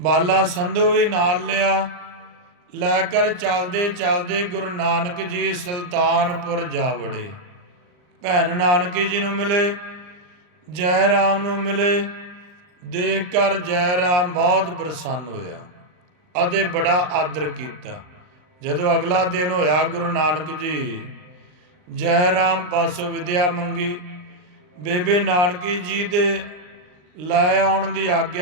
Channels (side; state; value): left; late; 39 ms